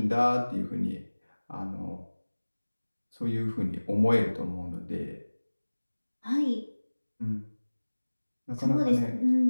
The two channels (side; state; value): both; inverted; correlation -1.00